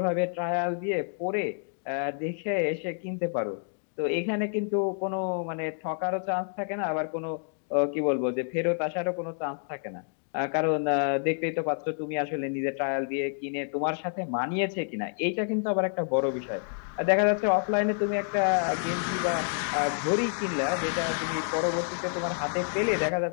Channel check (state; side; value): silent; right; 59 dB below the other